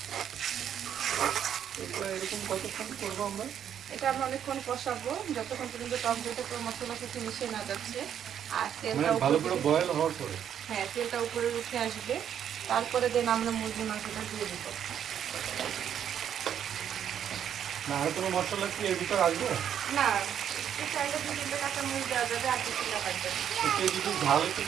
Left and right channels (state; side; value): quieter; left; 9.2 dB